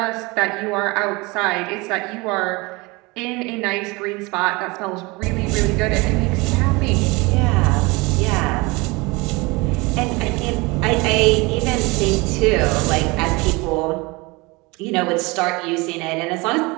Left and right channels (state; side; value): quieter; left; 25.0 dB